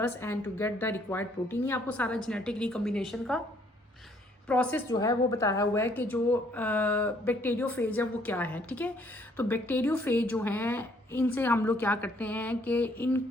and to get the required protein. ये आपको सारा genetic recombination का प्रोसेस जो है वो बताया हुआ है कि जो बैक्टीरियोफेज है वो क्या है, ठीक है। तो बैक्टीरियोफेज जो हैं इनसे हम लोग क्या करते हैं कि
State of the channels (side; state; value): both; normal; correlation 0.65